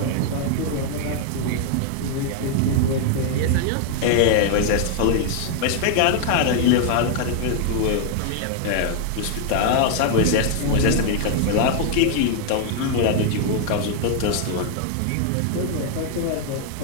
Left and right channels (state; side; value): different; both; correlation 0.00